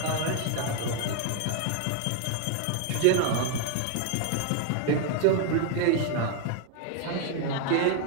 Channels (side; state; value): both; different; correlation 0.00